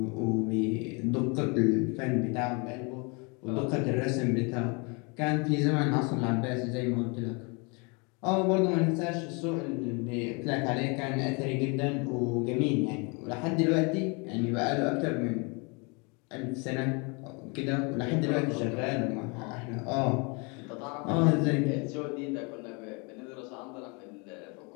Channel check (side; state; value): right; quieter; 31.7 dB